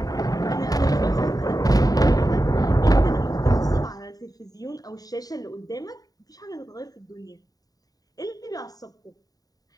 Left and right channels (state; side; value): late; right; 0.18 ms